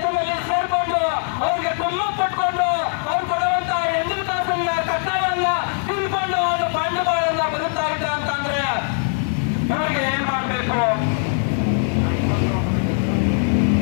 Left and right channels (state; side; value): silent; right; 57 dB below the other